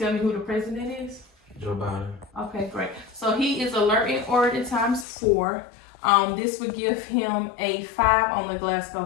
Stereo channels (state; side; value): drops out; right; at 5.1 s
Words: me who the president is? Joe Biden. Okay, great. So he is alert and oriented times 4. This would give him a 5 on the